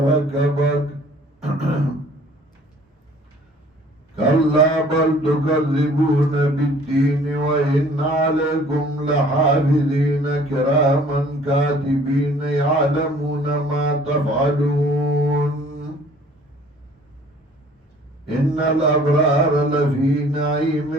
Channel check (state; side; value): normal; both; correlation 0.54